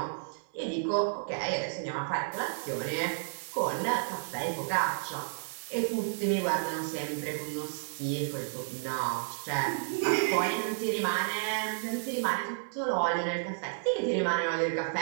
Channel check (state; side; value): silent; left; digital silence